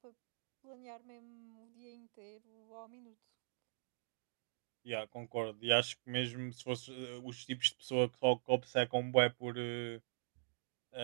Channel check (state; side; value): silent; left; digital silence